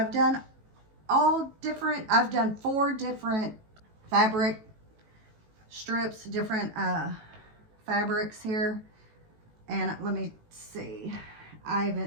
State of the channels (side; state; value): left; late; 18 ms